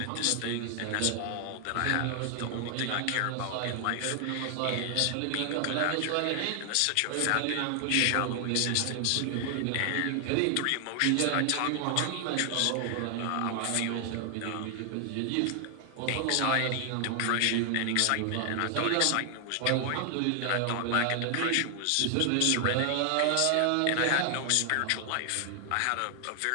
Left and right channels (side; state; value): both; different; correlation 0.00